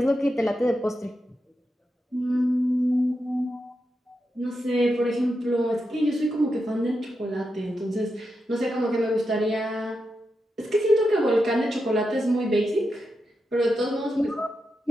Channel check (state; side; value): normal; both; correlation 0.87